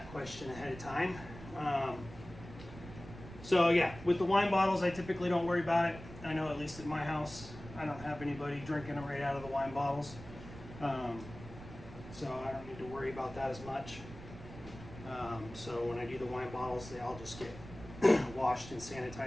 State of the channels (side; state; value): right; noise; rumble, 14 dB below the sound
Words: question ahead of time. So yeah, with the wine bottles, I typically don't worry about it. I know at least at my house, I don't have anybody drinking them right out of the wine bottles. So I don't need to worry about that as much. So when I do the wine bottles, they all just get washed in